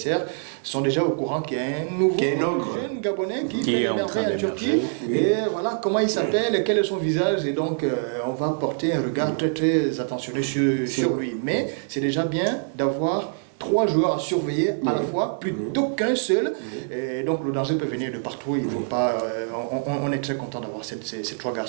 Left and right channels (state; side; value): silent; left; digital silence